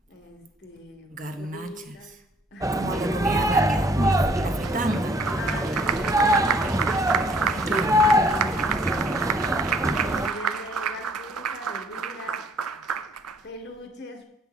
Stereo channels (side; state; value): both; normal; correlation 0.60